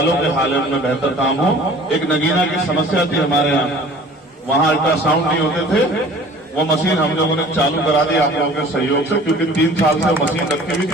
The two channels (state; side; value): normal; both; correlation 0.48